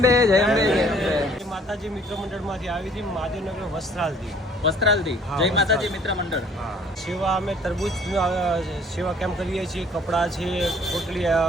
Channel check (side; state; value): both; normal; correlation 0.57